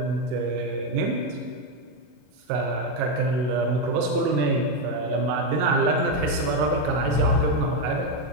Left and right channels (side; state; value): left; late; 40 ms